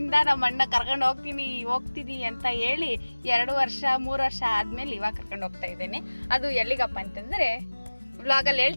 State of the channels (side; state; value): both; inverted; correlation -1.00